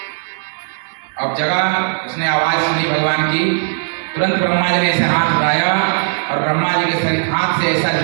अब जगह उसने आवाज सुनी भगवान की, तुरंत ब्रह्मा जी ने ऐसे हाथ उठाया और ब्रह्मा जी के शरीर हाथ से ऐसा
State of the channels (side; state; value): left; silent; digital silence